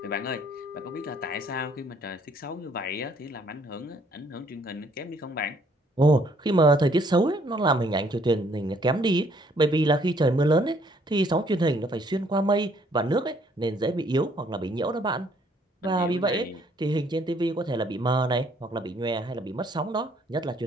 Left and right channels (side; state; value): both; normal; correlation 0.64